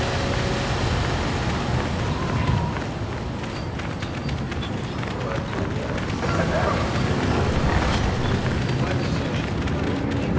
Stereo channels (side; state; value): both; identical; correlation 1.00